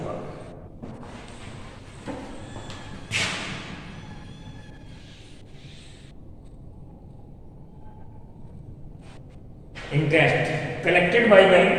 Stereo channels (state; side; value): identical; both; correlation 1.00